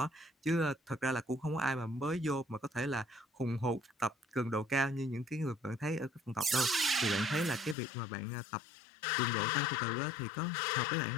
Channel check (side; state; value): right; drops out; at 7.8 s